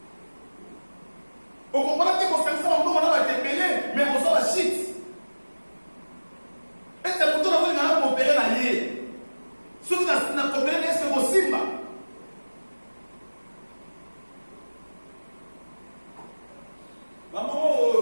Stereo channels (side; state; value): both; inverted; correlation -1.00